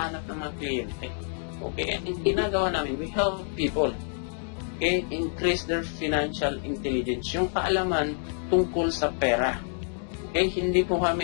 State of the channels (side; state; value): right; silent; 60 dB below the other